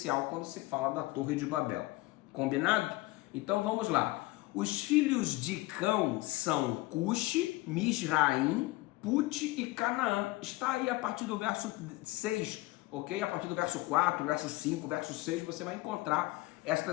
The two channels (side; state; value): right; quieter; 20.3 dB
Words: quando se fala da Torre de Babel. Combinado? Então vamos lá. Os filhos de Cão são Cuxi, Misraim, Put e Canaã. Está aí a partir do verso 6, ok? A partir do verso 4, verso 5, verso 6, você vai encontrar